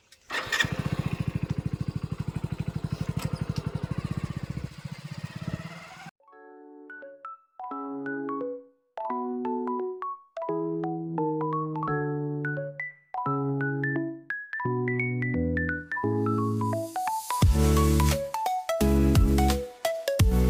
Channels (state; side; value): identical; both; correlation 1.00